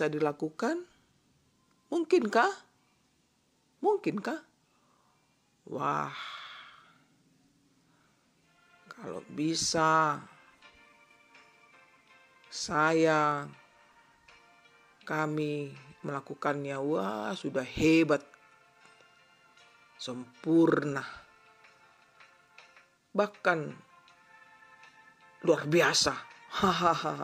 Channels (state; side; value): identical; both; correlation 1.00